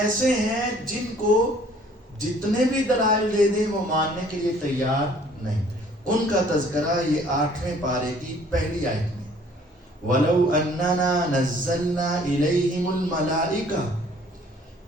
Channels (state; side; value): normal; both; correlation 0.57